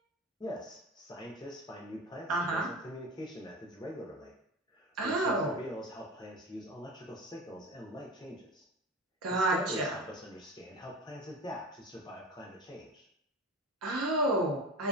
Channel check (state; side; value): normal; both; correlation 0.30